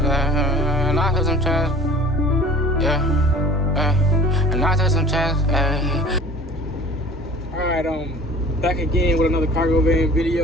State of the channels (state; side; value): normal; both; correlation 0.45